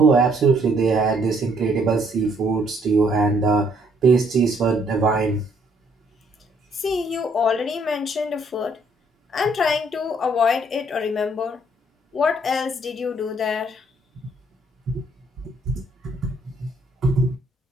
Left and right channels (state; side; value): normal; both; correlation 0.66